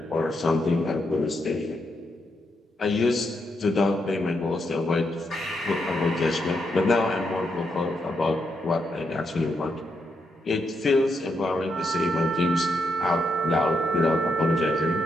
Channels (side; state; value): both; normal; correlation 0.80